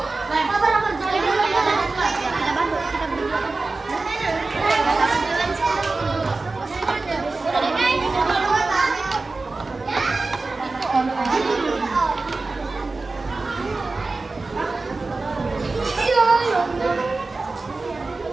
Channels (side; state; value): left; quieter; 3.6 dB